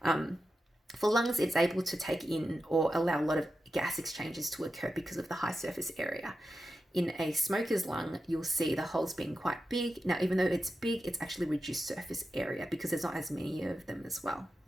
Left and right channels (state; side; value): normal; both; correlation 0.90